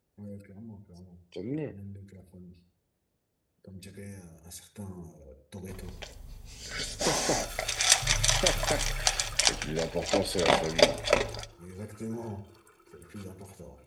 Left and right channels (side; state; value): both; identical; correlation 1.00